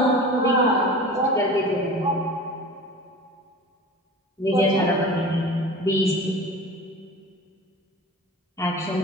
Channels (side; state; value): both; normal; correlation 0.37